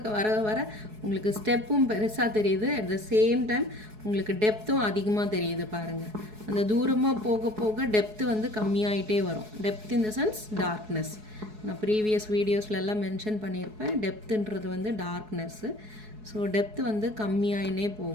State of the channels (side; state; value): left; late; 4.7 ms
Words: வர வர உங்களுக்கு ஸ்டெப்பும் பெருசாக தெரியுது, அட் த சேம் டைம் உங்களுக்கு டெப்த்தும் அதிகமாக தெரியுது பாருங்கள். அந்த தூரமாக போக போக டெப்த்து வந்து கம்மியாயிட்டே வரும். Depth in the sense darkness. நான் ப்ரீவியஸ் வீடியோஸில் எல்லாம் மென்ஷன் பண்ணியிருப்பேன். டெப்த்துன்றது வந்து டார்க்னஸ்ஸு. ஸோ டெப்த்து வந்து கம்மியாயினே